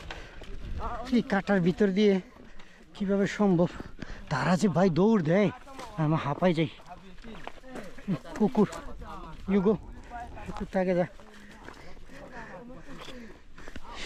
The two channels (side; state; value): both; identical; correlation 1.00